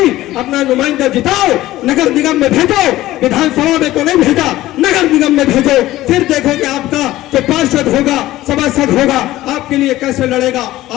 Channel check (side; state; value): right; quieter; 15.9 dB